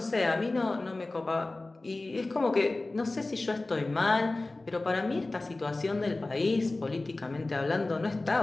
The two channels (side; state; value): right; quieter; 3.1 dB